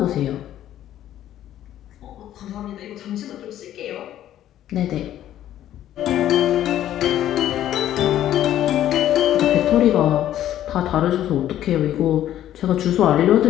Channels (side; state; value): right; quieter; 12.1 dB